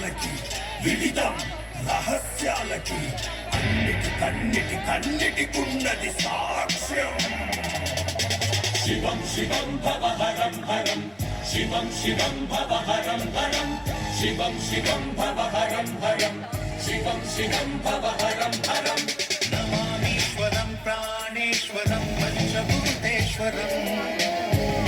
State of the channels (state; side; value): identical; both; correlation 1.00